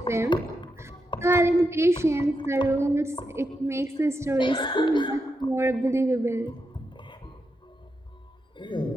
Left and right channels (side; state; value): both; normal; correlation 0.85